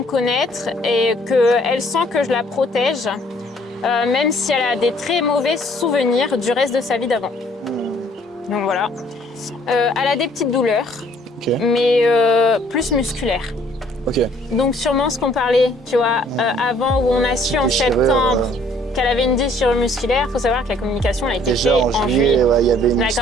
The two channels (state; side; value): normal; both; correlation 0.60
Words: connaître et qu'elle sent que je la protège, même si elle a des très mauvais souvenirs du reste de sa vie d'avant. Donc voilà. Elle a des petites douleurs, mais plus musculaires. Ok. Donc sûrement ce qu'on parlait, tu vois, avant où on a su en septembre qu'elle avait une déchirure musculaire. Il faut savoir que la communication a été faite en juillet. Ouais, il y avait une